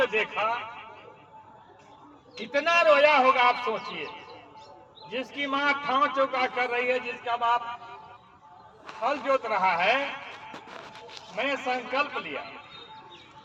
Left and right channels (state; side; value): identical; both; correlation 1.00